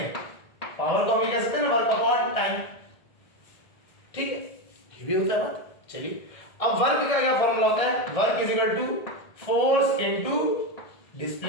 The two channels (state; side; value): late; right; 1.8 ms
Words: पावर को हम कह सकते हैं ना, वर्क अपॉन टाइम, ठीक है, ये भी होता है बात। चलिए अब वर्क का क्या फॉर्मूला होता है, work is equal to force into